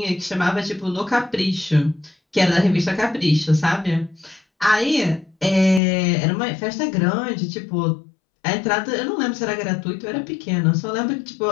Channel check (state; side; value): drops out; right; at 5.8 s